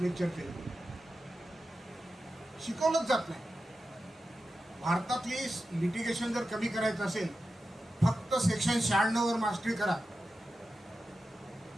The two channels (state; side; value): normal; both; correlation 0.92